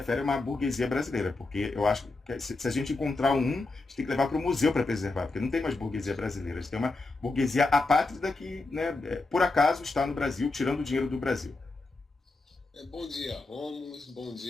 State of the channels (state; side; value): quieter; right; 3.3 dB